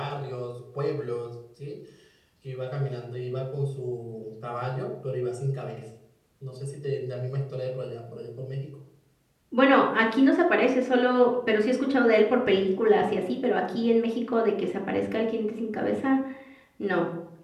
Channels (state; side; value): identical; both; correlation 1.00